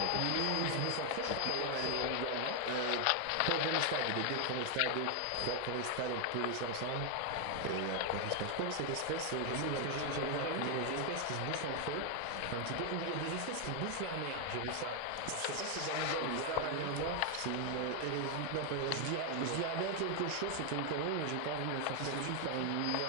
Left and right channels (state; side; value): different; both; correlation 0.00